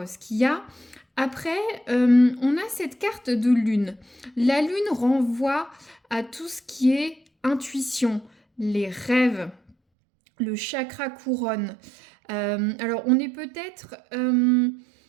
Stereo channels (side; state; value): left; drops out; at 9.8 s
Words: ce qu'il y a. Après, on a cette carte de lune. La lune renvoie à tout ce qui est intuition, les rêves, le chakra couronne. Alors, on est peut-être